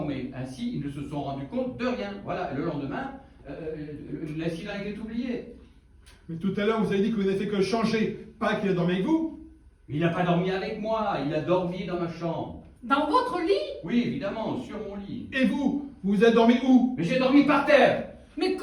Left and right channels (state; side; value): identical; both; correlation 1.00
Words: Ainsi, ils ne se sont rendus compte de rien. Voilà, et le lendemain, l'incident a été oublié. Mais tout à l'heure, vous avez dit que vous n'avez fait que changer, pas qu'il a dormi avec vous? Il n'a pas dormi avec moi, il a dormi dans ma chambre. Dans votre lit? Oui, évidemment, sur mon lit. Et vous avez dormi où? Mais j'ai dormi par terre. Mais